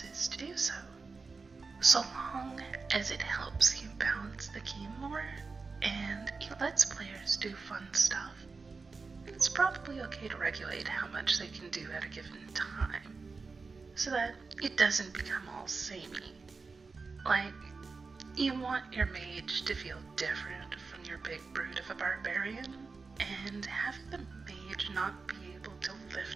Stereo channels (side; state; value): left; quieter; 4.4 dB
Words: to do so. So long as it helps you balance the game more and it lets players do fun stuff, it's it's probably okay to regulate how much they can do at a given time, so that it doesn't become all samey. Like, you want your mage to feel different from your big brute of a barbarian, and having the mage not be able to